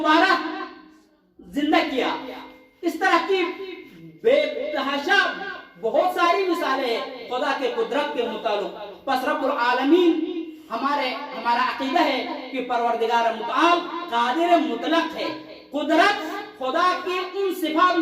زندہ کیا۔ اس طرح کی بے تحاشا بہت ساری مثالیں ہیں خدا کے قدرت کے متعلق۔ پس رب العالمین ہمارا عقیدہ ہے کہ پروردگار متعال قادر مطلق ہے۔ قدرت خدا کی ان صفات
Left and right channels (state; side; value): identical; both; correlation 1.00